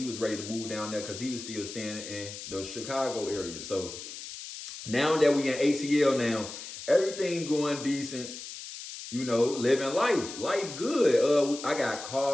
was ready to move down there because he was still staying in the Chicago area. So now that we in ATL now, everything going decent, living life. Life good. I got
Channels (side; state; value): left; noise; hiss, 11 dB below the sound